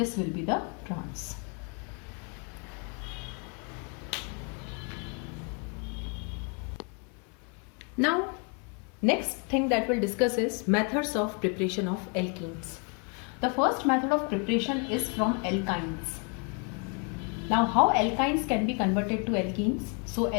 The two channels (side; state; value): right; quieter; 36.3 dB